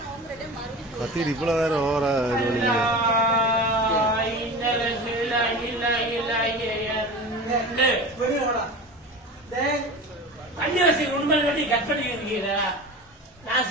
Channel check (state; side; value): normal; both; correlation 0.32